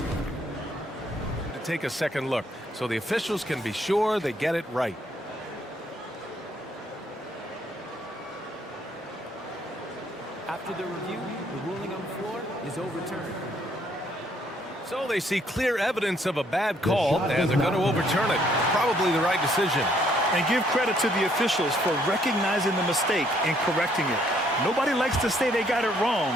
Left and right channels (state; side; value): normal; both; correlation 0.67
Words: to take a second look, so the officials can be sure they get it right. After the review, the ruling on the floor is overturned. So they see clear evidence of a bad call, and they're going to overturn it. Probably the right decision. And give credit to the officials for recognizing the mistake and correcting it. Nobody likes to say they got it wrong,